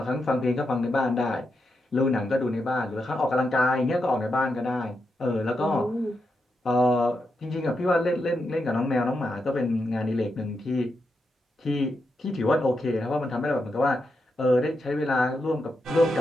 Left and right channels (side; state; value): both; normal; correlation 0.85